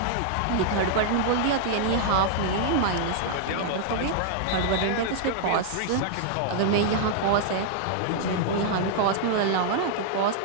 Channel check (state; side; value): different; both; correlation -0.01